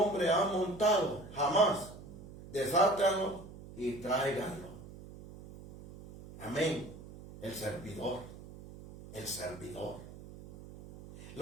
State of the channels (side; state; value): right; noise; hum, 16 dB below the sound